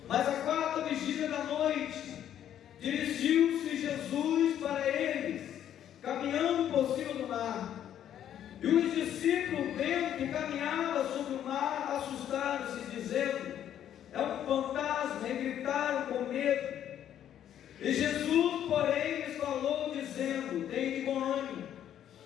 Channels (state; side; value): quieter; right; 10.4 dB